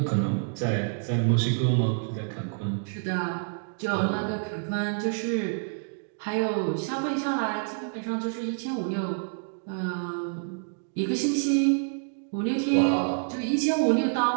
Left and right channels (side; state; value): left; silent; digital silence